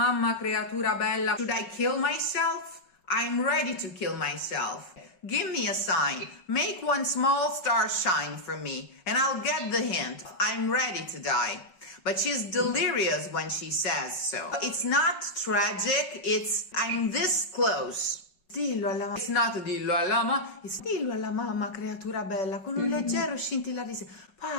creatura bella. Should I kill myself? I'm ready to kill myself. Give me a sign. Make one small star shine for me, and I'll get the hint. I'm ready to die. But she's delirious when she says so. It's not tragic, it's I'm this close. Dillo alla mamma. It's not dillo alla mamma, it's dillo alla mamma, creatura bella, con un leggero scintillare di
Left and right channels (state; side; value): late; right; 5.4 ms